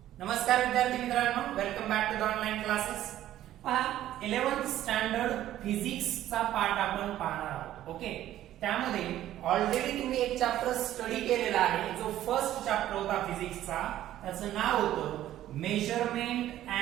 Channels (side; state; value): left; quieter; 13.0 dB